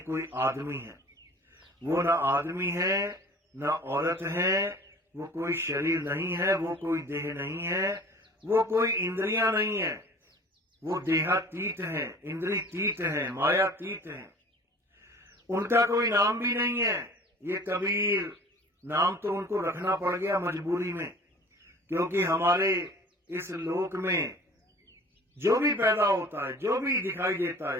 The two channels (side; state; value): both; normal; correlation 0.46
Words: कोई आदमी है। वो ना आदमी है, ना औरत है, वो कोई शरीर नहीं है, वो कोई देह नहीं है, वो कोई इंद्रियां नहीं है, वो देहातीत है, इंद्रियतीत है, मायातीत है। उनका कोई नाम भी नहीं है। ये कबीर नाम तो उनको रखना पड़ गया मजबूरी में, क्योंकि हमारे इस लोक में जो भी पैदा होता है, जो भी दिखाई देता है,